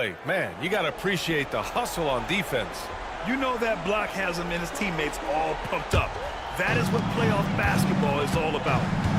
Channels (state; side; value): identical; both; correlation 1.00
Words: Man, you got to appreciate the hustle on defense. You know that block has him and his teammates all pumped up. That is what playoff basketball is all about.